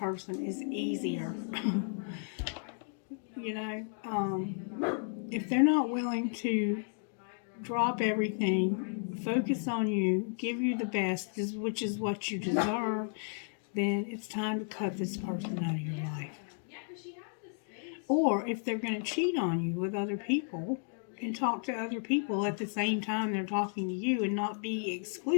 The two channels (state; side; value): silent; right; 56 dB below the other